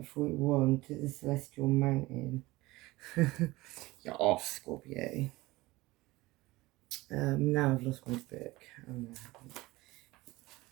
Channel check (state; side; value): quieter; left; 20.1 dB